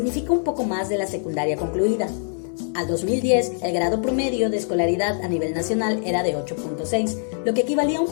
un poco más de la secundaria concluida. Al 2010, el grado promedio de escolaridad a nivel nacional era de 8.6, lo que equivalía a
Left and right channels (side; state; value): right; silent; digital silence